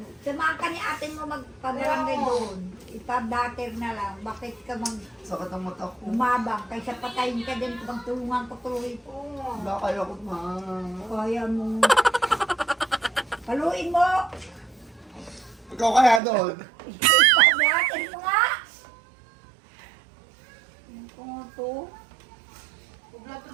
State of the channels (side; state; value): left; drops out; at 16.2 s